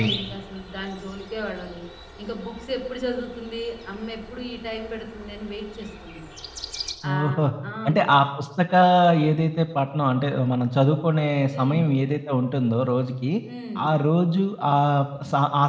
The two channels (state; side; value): identical; both; correlation 1.00